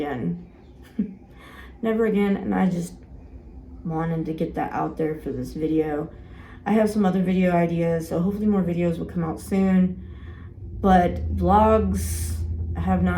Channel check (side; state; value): both; identical; correlation 1.00